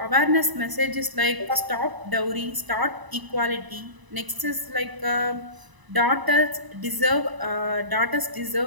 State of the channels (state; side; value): late; left; 1.0 ms